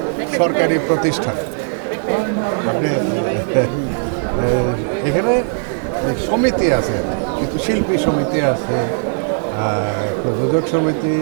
সরকারি প্রতিষ্ঠান। আপনি এখানে সমিতি আছে, কিন্তু শিল্পী সমিতি আছে, প্রযোজক সমিতি,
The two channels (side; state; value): left; silent; 58 dB below the other